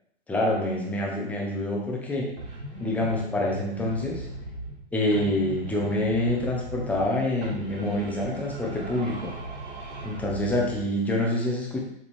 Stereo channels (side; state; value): both; normal; correlation 0.28